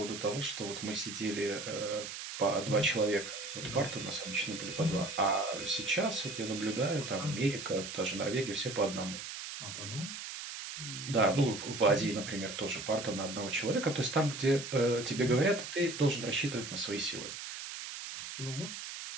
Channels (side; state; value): right; noise; hiss, 8 dB below the sound